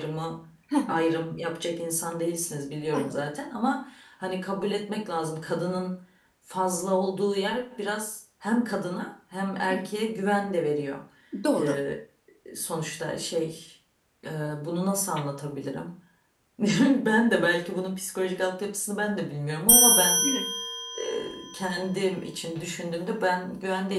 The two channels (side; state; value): both; identical; correlation 1.00